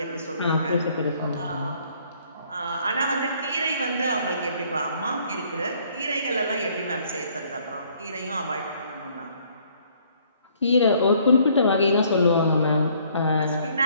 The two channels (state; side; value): inverted; both; correlation -0.63